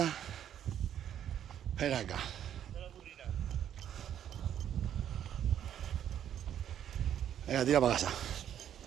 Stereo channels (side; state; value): left; quieter; 10.1 dB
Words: Ven acá. Venga, tira para casa.